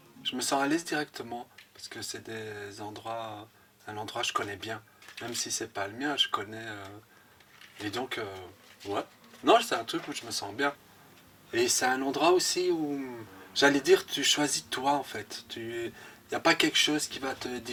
je me sens à l'aise directement parce que c'est des endroits, un endroit que je connais bien, même si c'est pas le mien, je connais et donc ouais, non, c'est un truc où je me sens bien et c'est un endroit aussi où j'allais dire tu choisis toi en fait, il n'y a pas quelque chose qui va te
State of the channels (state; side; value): identical; both; correlation 1.00